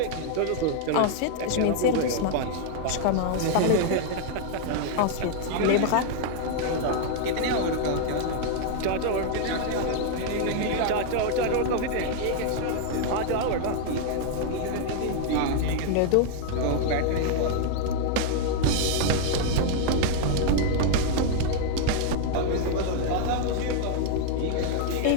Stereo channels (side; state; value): both; different; correlation 0.00